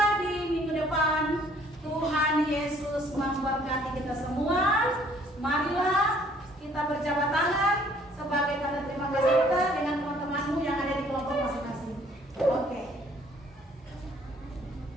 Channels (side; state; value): both; normal; correlation 0.60